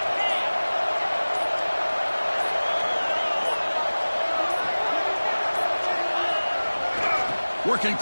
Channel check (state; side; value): inverted; both; correlation -1.00